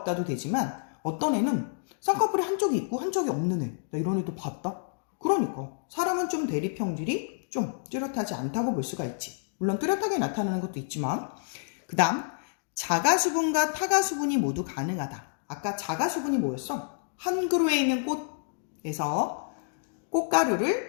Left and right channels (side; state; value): right; silent; digital silence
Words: 되지만 어떤 애는 쌍꺼풀이 한쪽이 있고 한쪽이 없는 애. 야, 이런 애도 봤다? 그러니까 사람은 좀 대립형질이 좀 뚜렷하지 않다고 볼 수가 있지. 물론 뚜렷하게 나타나는 것도 있지만 그 다음 자가수분과 타가수분이 모두 가능하다. 아까 자가수분이 뭐였어? 한 그루에 있는 꽃에서